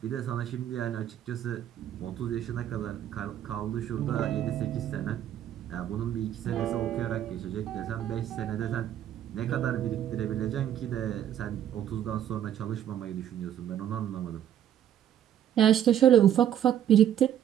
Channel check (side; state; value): left; quieter; 10.6 dB